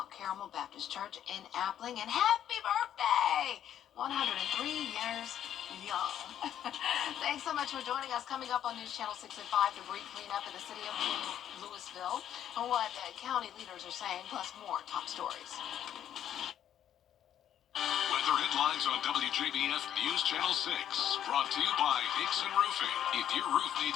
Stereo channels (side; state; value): right; quieter; 10.4 dB